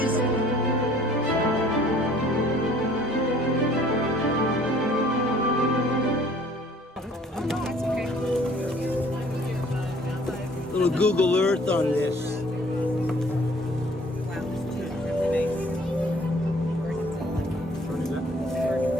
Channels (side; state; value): both; normal; correlation 0.55